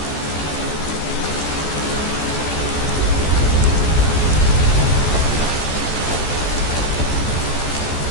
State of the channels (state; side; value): late; right; 14 ms